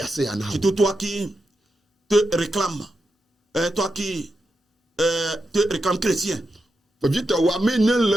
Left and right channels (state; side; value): normal; both; correlation 0.88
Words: Surtout toi qui te réclames, toi qui te réclames chrétien.